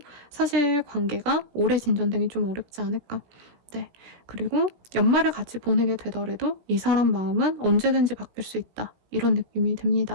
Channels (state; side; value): late; left; 17 ms